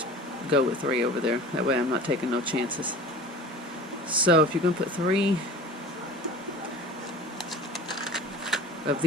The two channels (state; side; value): normal; both; correlation 0.40